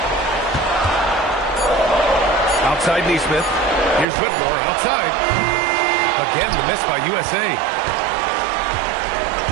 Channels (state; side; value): drops out; left; at 4.0 s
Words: Outside Nesmith. Here's Whitmore outside. Again the miss by USA.